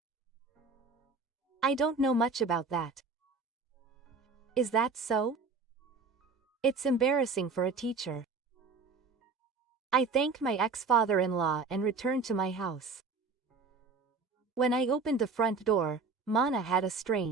I don't know much about that. Is that so? It's embarrassing for a teacher. I thanked my ex-father-in-law and returned to my house. When I opened the front door, Mana had a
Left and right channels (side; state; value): left; quieter; 4.5 dB